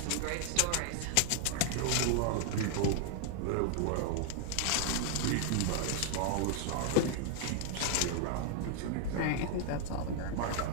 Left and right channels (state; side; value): different; both; correlation 0.00